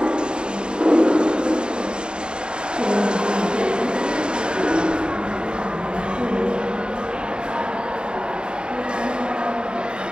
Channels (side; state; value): left; late; 0.049 ms